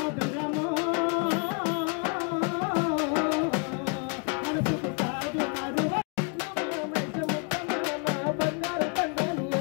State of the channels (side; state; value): right; quieter; 36.9 dB